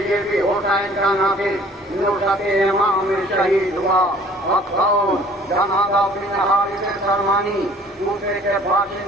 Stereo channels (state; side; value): normal; both; correlation 0.53